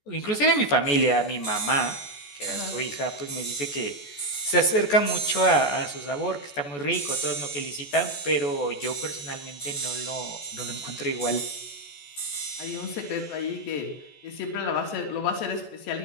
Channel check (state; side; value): late; right; 14 ms